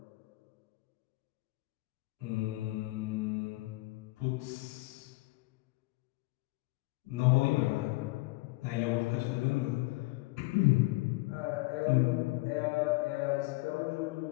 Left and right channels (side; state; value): right; quieter; 22.4 dB